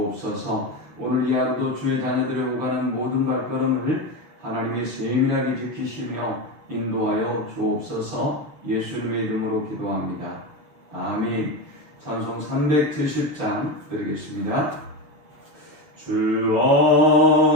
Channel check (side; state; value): left; late; 6.9 ms